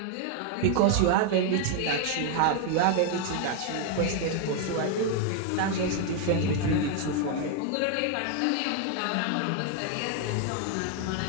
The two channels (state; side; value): different; both; correlation 0.01